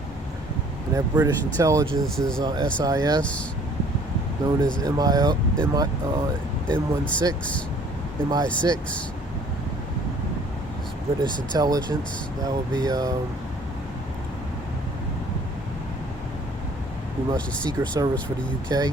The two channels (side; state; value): both; normal; correlation 0.55